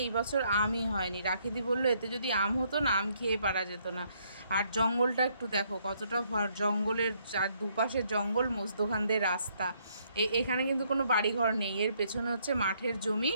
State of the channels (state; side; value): inverted; both; correlation -0.70